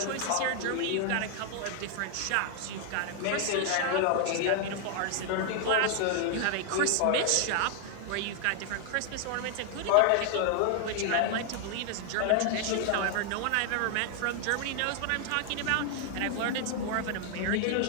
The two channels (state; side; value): different; both; correlation 0.00